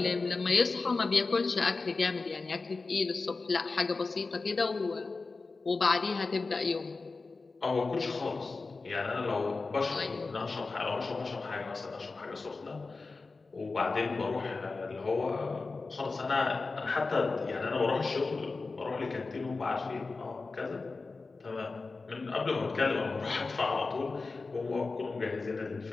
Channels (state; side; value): quieter; right; 3.9 dB